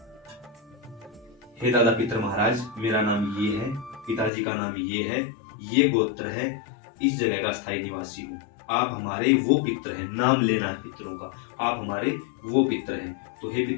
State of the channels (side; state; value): right; drops out; at 4.3 s